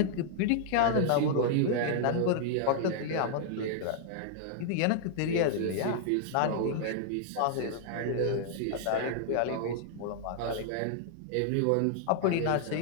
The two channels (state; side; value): different; both; correlation -0.01